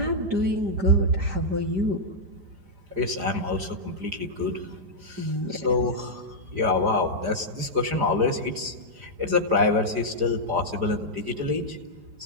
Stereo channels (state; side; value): late; left; 4.9 ms